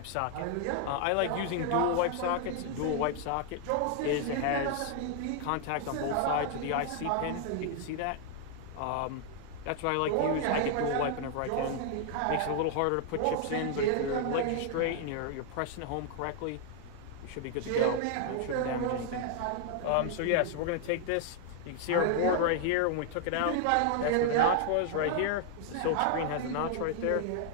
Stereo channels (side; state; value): both; different; correlation 0.00